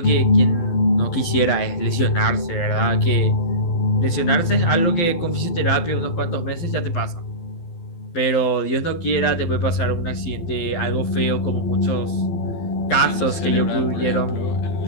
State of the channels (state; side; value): late; right; 12 ms